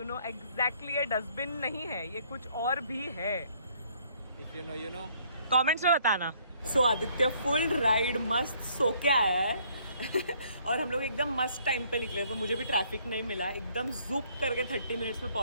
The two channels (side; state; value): both; inverted; correlation -0.64